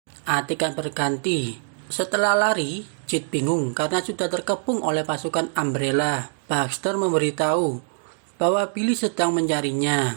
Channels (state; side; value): silent; left; digital silence